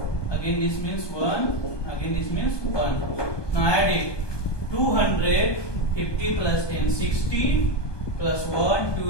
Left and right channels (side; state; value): right; late; 1.2 ms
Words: again this means 1, again this means 1. Now add it, 200, 50 plus 10, 60 plus 1,